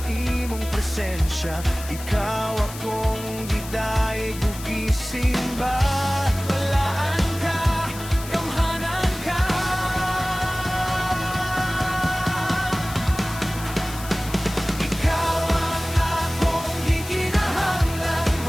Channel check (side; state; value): left; noise; hiss, 13 dB below the sound